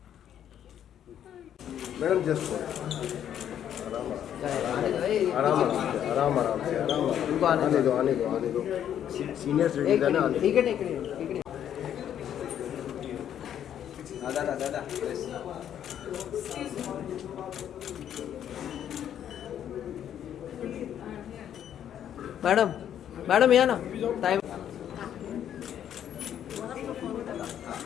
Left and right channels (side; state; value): right; quieter; 10.0 dB